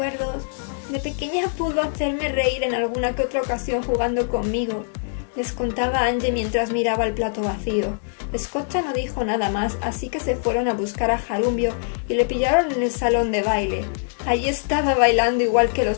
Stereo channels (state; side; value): silent; right; digital silence